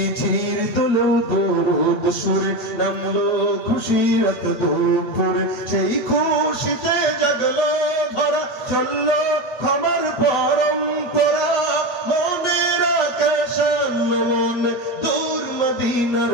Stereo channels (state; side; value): late; right; 8.1 ms